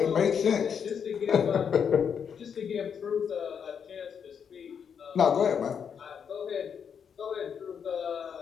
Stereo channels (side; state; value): right; quieter; 7.3 dB